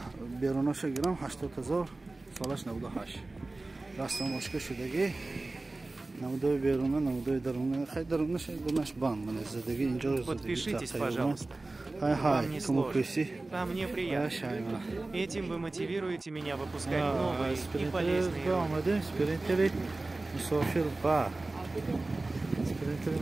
beronosha giram 80000 solaj 98. Rastam boshqa shudagi Наводой беруна, наводой даруна, хай даруна, шай дунаш бан, мне задаги инжор. Подпишитесь, пожалуйста. Вам не сложно, а мне приятно. Этим вы мотивируете меня выпускать новые и полезные ролики. Спринтери مسافر با спринтери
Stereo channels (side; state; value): left; quieter; 3.1 dB